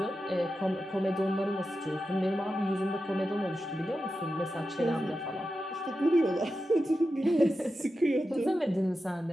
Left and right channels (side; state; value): both; normal; correlation 0.91